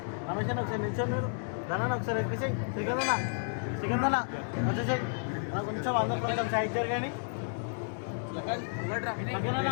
రమేష్ ఒకసారి నిల్చొని మీరు ధనాన్ని ఒకసారి ఎక్కించి శ్రీకందన వచ్చేసాయి కొంచెం అందరు కొంచెం సైడ్ జరగండి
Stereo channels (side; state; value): right; silent; digital silence